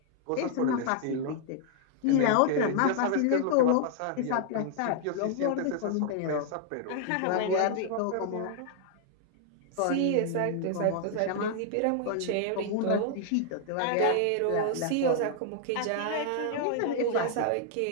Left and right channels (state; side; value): different; both; correlation 0.00